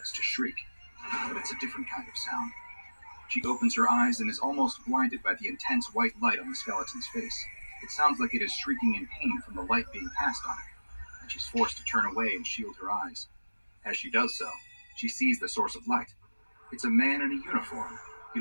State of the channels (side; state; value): both; inverted; correlation -1.00